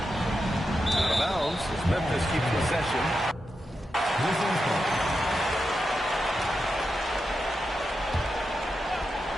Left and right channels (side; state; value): both; normal; correlation 0.88